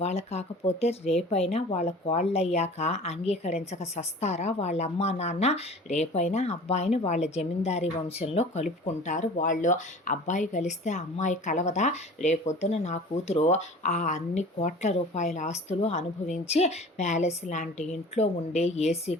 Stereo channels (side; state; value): both; normal; correlation 0.42